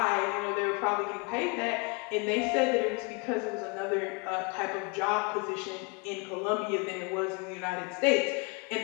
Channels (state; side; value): quieter; right; 31.1 dB